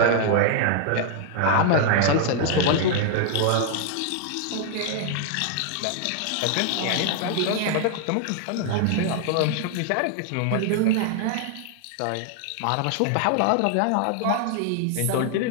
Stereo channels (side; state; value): both; different; correlation 0.00